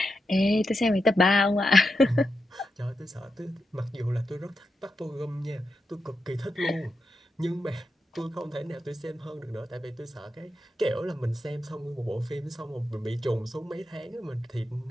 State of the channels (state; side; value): normal; both; correlation 0.87